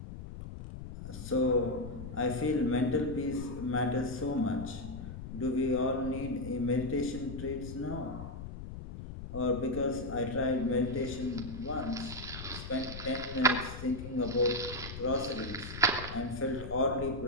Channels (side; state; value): left; noise; rumble, 10 dB below the sound